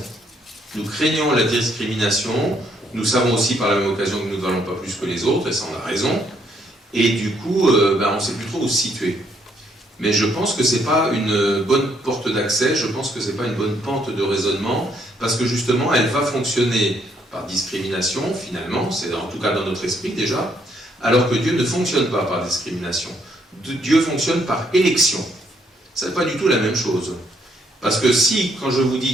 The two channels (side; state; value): both; normal; correlation 0.71